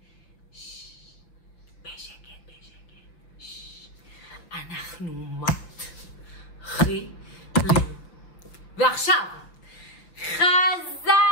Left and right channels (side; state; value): right; late; 5.9 ms